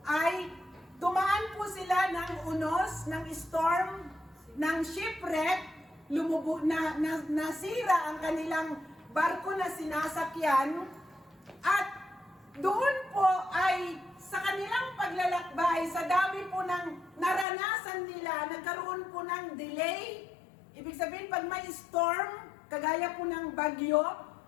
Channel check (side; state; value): right; drops out; at 17.4 s